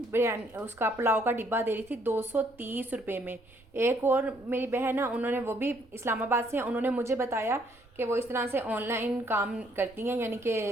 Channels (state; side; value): noise; right; rumble, 27 dB below the sound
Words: बिरयानी, उसका पुलाव का डिब्बा दे रही थी 230 रुपये में। एक और मेरी बहन है, उन्होंने, वो भी इस्लामाबाद से हैं, उन्होंने मुझे बताया कि वो इस तरह से ऑनलाइन काम करती हैं, यानी